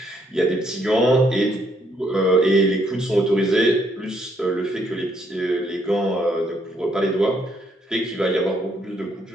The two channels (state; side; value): normal; both; correlation 0.72